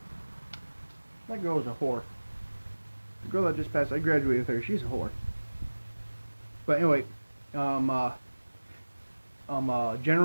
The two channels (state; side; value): inverted; both; correlation -1.00